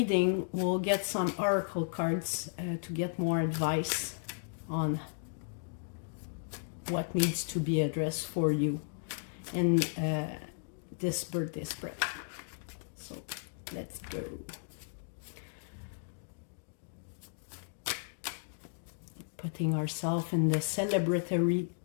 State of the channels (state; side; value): silent; right; digital silence